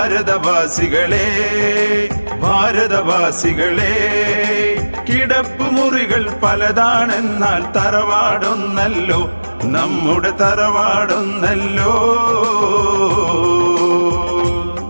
ഭാരതവാസികളെ. കിടപ്പ് മുറികൾ പലതാണെന്നാൽ തറവാടൊന്നല്ലോ, നമ്മുടെ തറവാടൊന്നല്ലോ.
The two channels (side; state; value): both; inverted; correlation -1.00